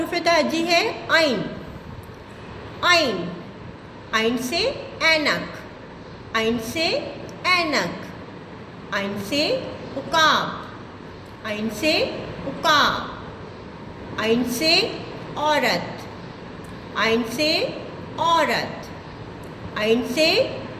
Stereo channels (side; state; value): both; identical; correlation 1.00